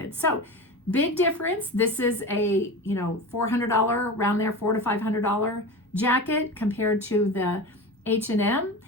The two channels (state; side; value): normal; both; correlation 0.28